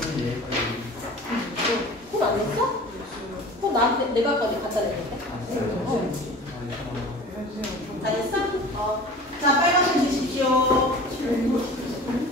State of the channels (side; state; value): both; normal; correlation 0.40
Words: 내가 거기 갖다 냈는데. 다 됐어? 자, 빨간색 드십시오.